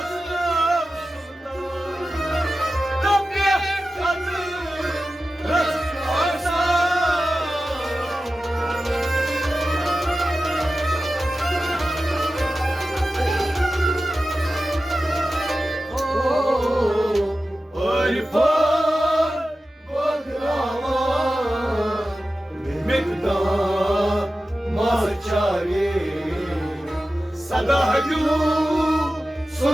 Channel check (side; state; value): both; normal; correlation 0.94